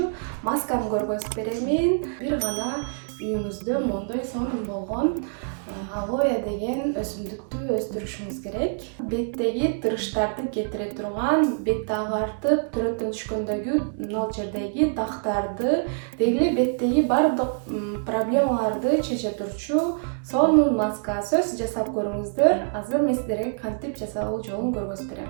масканы көргөзүп беремин. Бир гана үйүңүздө мондой сонун болгон алоэ деген өсүмдүктү өстүрүшүңүз керек. Беттеги тырыштарды кетире турган, бетти агартып, түрөттөн түшкөндөгү мына жердеги дактарды, деги эле беттеги баардык проблемаларды чече турчу сонун маска. Сөз жасап көрүңүздөр. Азыр мен сиздерге кантип жасалуу жолун көргөзүп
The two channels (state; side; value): silent; left; 61 dB below the other